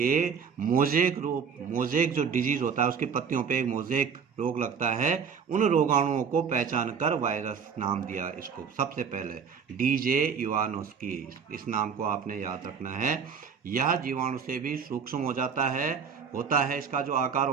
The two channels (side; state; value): left; quieter; 6.5 dB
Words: मोजेक जो डिजीज होता है उसकी पत्तियों पे एक मोजेक रोग लगता है, उन रोगाणुओं को पहचान कर वायरस नाम दिया इसको सबसे पहले, DJ इवानोस्की। इस नाम को आपने याद रखना है। यह जीवाणु से भी सूक्ष्म होता है। इसका जो आकार